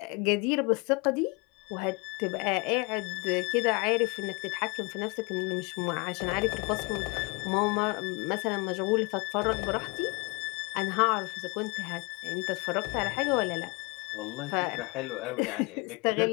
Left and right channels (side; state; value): right; quieter; 28.1 dB